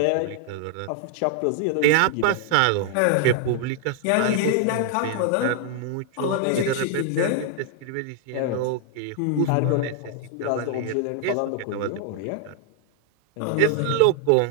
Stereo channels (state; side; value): different; both; correlation 0.00